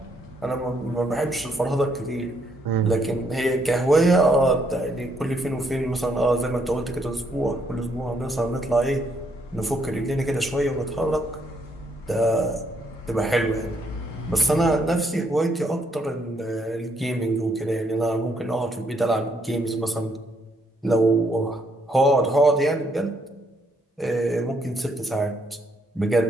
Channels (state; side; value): normal; both; correlation 0.72